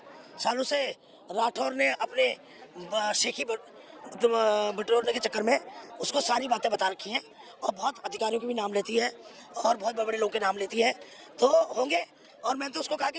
से राठौर ने अपने शेखी बटोरने के चक्कर में उसको सारी बातें बता रखी हैं और बहुत अधिकारियों के भी नाम लेती है और बहुत बड़े बड़े लोगों के नाम लेती है, तो होंगे। और मैंने तो उसको कहा कि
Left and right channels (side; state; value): both; identical; correlation 1.00